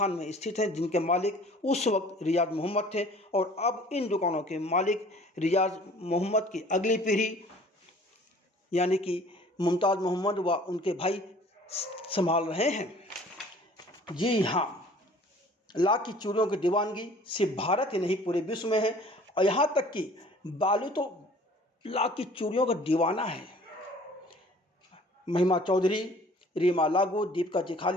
में स्थित हैं, जिनके मालिक उस वक्त रियाज मोहम्मद थे और अब इन दुकानों के मालिक रियाज मोहम्मद की अगली पीढ़ी यानी कि मुमताज़ मोहम्मद व उनके भाई संभाल रहे हैं। जी हाँ, लाख की चूड़ियों की दीवानगी सिर्फ भारत ही नहीं पूरे विश्व में है और यहाँ तक कि बालू तो लाख की चूड़ियों का दीवाना है। महिमा चौधरी, रीमा लागू, दीपिका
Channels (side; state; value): both; normal; correlation 0.50